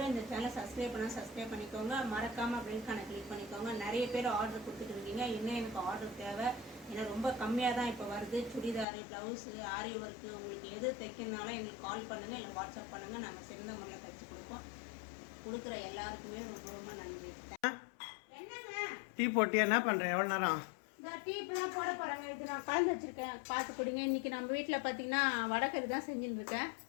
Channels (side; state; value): right; drops out; at 8.8 s